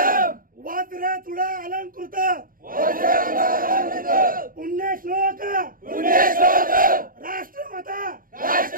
वज्र तुडा अलंकृत पुण्यश्लोक राष्ट्रमाता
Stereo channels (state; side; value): late; left; 0.41 ms